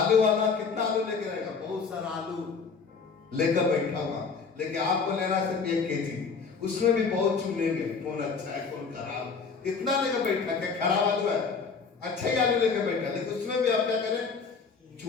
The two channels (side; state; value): right; quieter; 5.2 dB